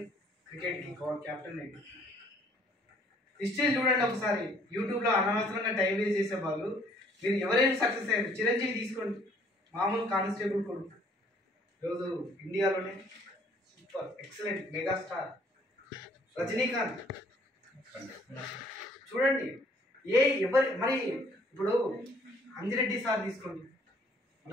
క్రికెట్కి క్యాప్టెన్ అయింది. హిస్టరీ చూడండి ఒకసారి. యూట్యూబ్లో అనవసరంగా టైం వేస్ట్ చేసే వాళ్ళు మీరు ఎవరైనా సక్సెస్ అయ్యారు. చిరంజీవి తీసుకోండి, మామూలు కానిస్టేబుల్ కొడుకు, ఈరోజు ఇండియాలోనే సూపర్ ఎక్సలెంట్ మెగాస్టార్. రజనీకాంత్ చూడండి, ఎవరి మరి ఇప్పుడు అంజిరెడ్డి సార్ తీసుకోండి,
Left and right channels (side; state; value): both; normal; correlation 0.60